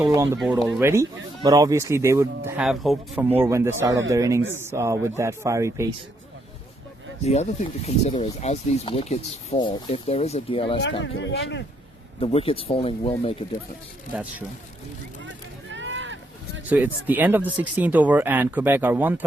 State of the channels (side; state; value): both; normal; correlation 0.75